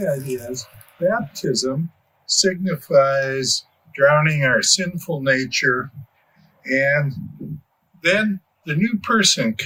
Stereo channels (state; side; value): identical; both; correlation 1.00